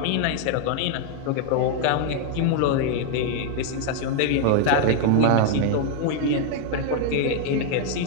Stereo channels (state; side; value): different; both; correlation 0.00